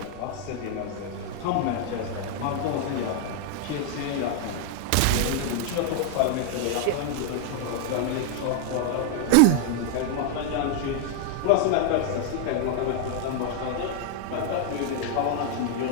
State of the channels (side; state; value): both; different; correlation 0.00